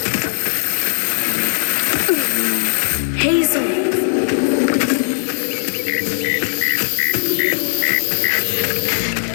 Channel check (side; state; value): right; silent; digital silence